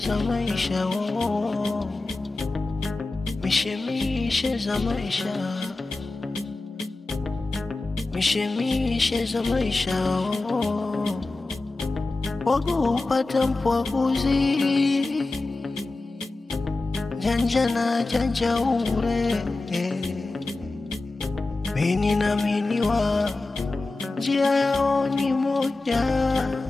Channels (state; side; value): quieter; right; 3.2 dB